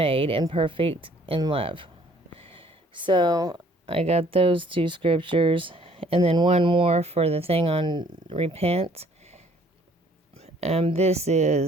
perfect in love. So I got those two scriptures, and then one more for the thing on repent. This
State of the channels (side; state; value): both; normal; correlation 0.59